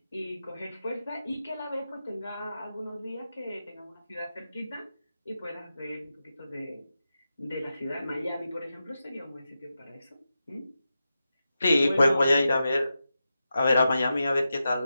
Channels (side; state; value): both; inverted; correlation -0.90